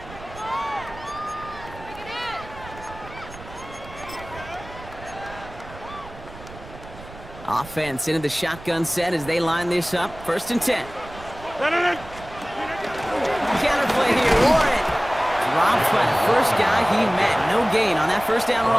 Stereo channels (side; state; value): right; noise; rumble, 16 dB below the sound